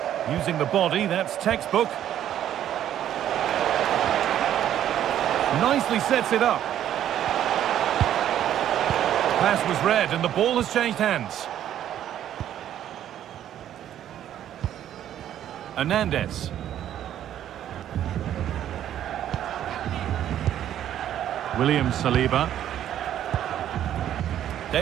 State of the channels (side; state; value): left; quieter; 11.1 dB